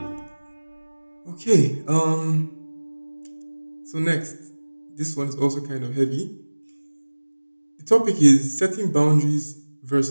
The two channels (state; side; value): inverted; both; correlation -1.00